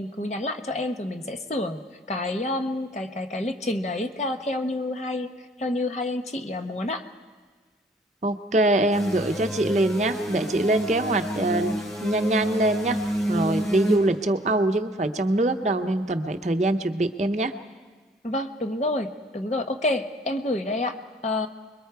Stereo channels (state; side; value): normal; both; correlation 0.58